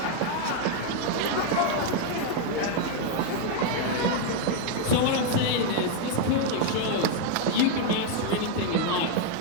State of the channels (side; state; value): both; different; correlation 0.01